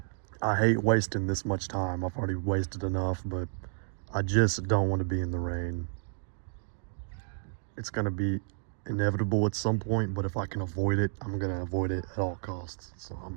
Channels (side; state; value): left; silent; digital silence